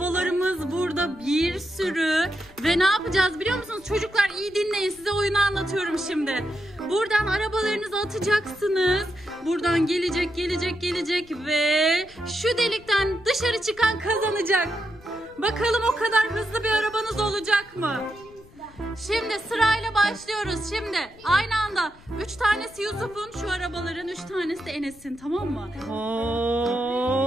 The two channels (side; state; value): left; noise; rumble, 24 dB below the sound